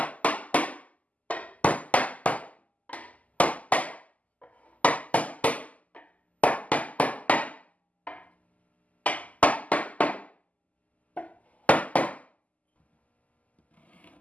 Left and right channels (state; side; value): late; right; 0.073 ms